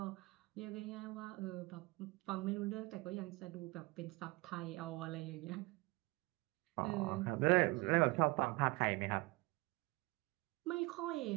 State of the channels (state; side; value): quieter; left; 24.0 dB